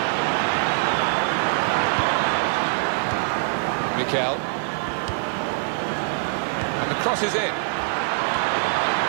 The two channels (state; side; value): silent; left; 63 dB below the other